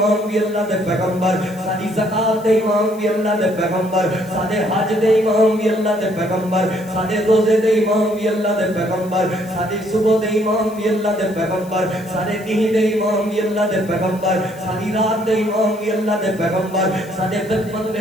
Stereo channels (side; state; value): left; noise; hiss, 22 dB below the sound